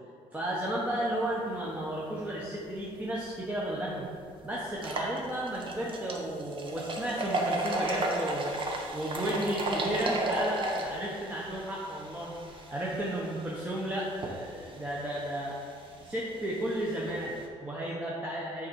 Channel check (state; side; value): normal; both; correlation 0.57